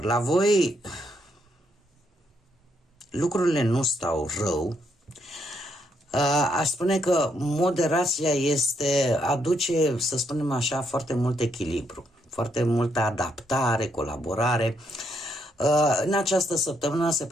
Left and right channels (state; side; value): normal; both; correlation 0.76